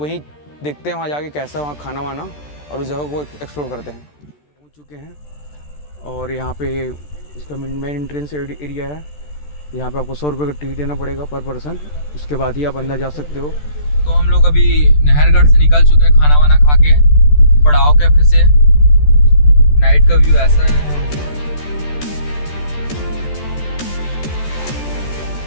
देखते हैं वहाँ जाके कैसा वहाँ खाना वाना और उस जगह को एक्सप्लोर करते हैं। पहुँच चुके हैं और यहाँ पे इसका मेन एंट्रेंस एरिया है। यहाँ पे आपको 100 रुपये का टिकट देना पड़ेगा पर पर्सन, उसके बाद ही आप अंदर जा सकते हो। तो हम लोग अभी नाहरगढ़ से निकल चुके हैं खाना वाना खा के पड़ाव कैफे से। नाइट का व्यू ऐसा है।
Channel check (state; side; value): late; right; 14 ms